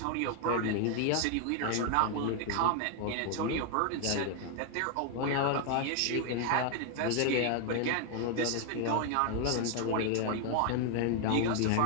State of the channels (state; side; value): different; both; correlation 0.00